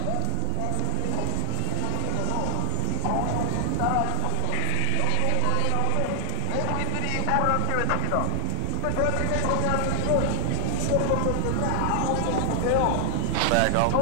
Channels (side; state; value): both; different; correlation 0.00